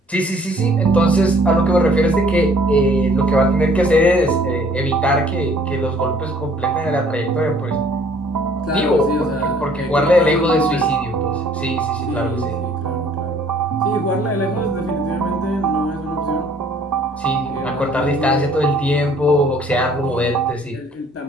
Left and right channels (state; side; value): normal; both; correlation 0.57